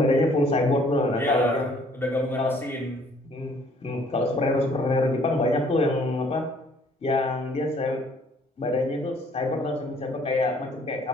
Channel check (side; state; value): both; normal; correlation 0.60